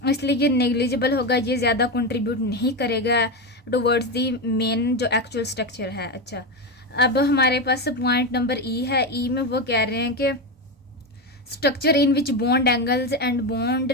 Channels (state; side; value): normal; both; correlation 0.15